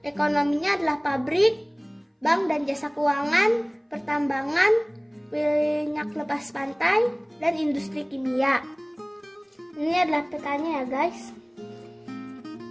adalah pabrik, bank dan jasa keuangan, pertambangan, minyak lepas pantai, dan industri kimia. Ini adalah petanya ya guys.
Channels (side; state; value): both; identical; correlation 1.00